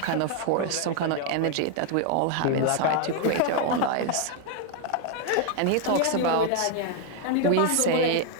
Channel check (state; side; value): different; both; correlation 0.00